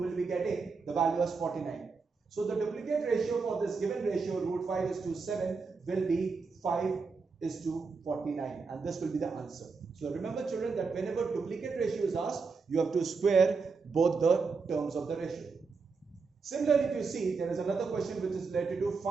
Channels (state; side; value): quieter; left; 4.7 dB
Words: be getting the value as 49. So the duplicate ratio for this given ratio root 5 is to 7 will be 5 is to 49, and this will be the answer. So remember children, that whenever duplicate ratio is asked, you have to square both the terms of the ratio. Similarly, if you see, there is another question which is related to